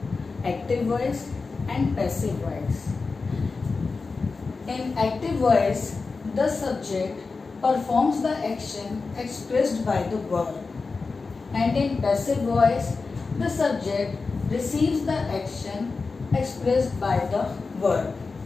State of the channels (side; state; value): right; quieter; 4.2 dB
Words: active voice and passive voice. In active voice, the subject performs the action expressed by the verb, and in passive voice, the subject receives the action expressed by the verb.